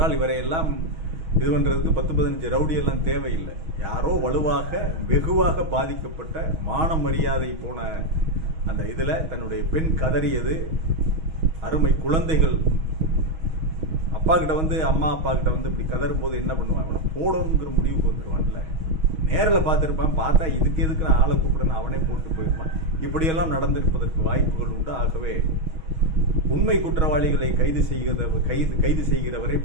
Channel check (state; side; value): late; left; 6.3 ms